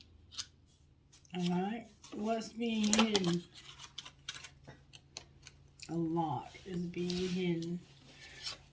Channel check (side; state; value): both; identical; correlation 1.00